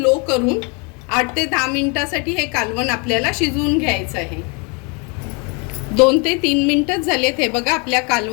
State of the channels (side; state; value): right; quieter; 32.6 dB